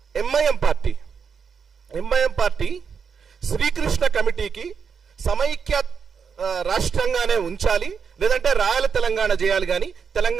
ఎంఐఎం పార్టీ శ్రీకృష్ణ కమిటీకి సమైక్య రాష్ట్రంగానే ఉంచాలి, లేదంటే రాయల తెలంగాణ చేయాలి, కానీ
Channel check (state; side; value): quieter; left; 6.3 dB